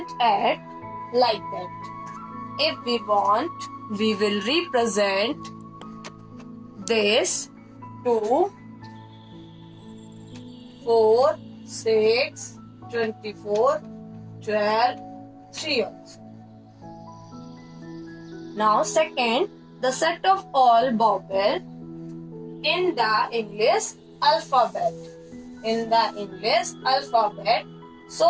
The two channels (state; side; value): identical; both; correlation 1.00